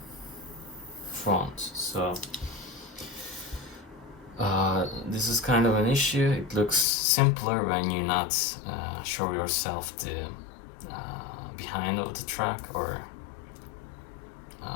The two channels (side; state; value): right; drops out; at 6.9 s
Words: front. So this is kind of an issue. It looks simpler when you not show yourself the behind of the truck, or